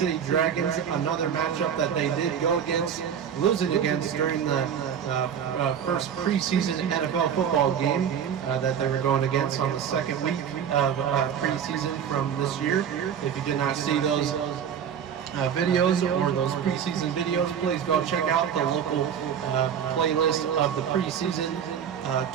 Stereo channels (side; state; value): left; quieter; 8.3 dB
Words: Dragons, another matchup that they did go against, losing against during the first preseason NFL football game that they were going against on the second week of preseason from this year. If you did not see those videos or those preseason videos, please go check out the local playlist of the preseason